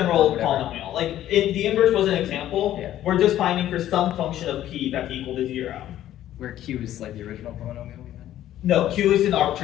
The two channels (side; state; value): right; quieter; 12.6 dB